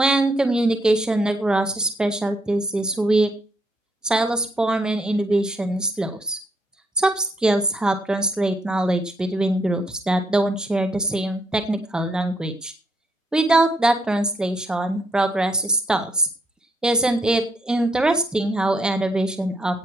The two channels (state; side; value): normal; both; correlation 0.75